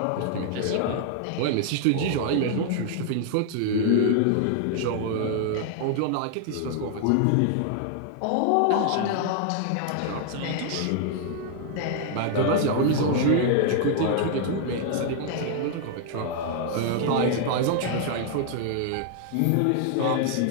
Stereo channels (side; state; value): both; different; correlation 0.00